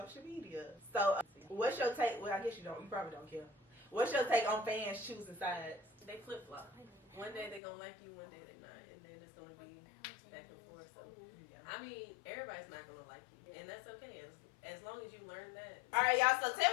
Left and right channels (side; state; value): right; drops out; at 7.6 s